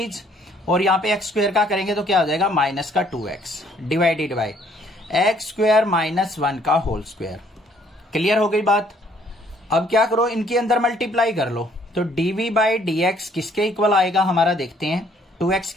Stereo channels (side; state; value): both; normal; correlation 0.63